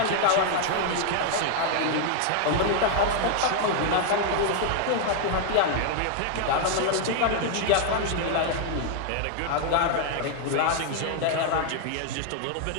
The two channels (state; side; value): different; both; correlation 0.00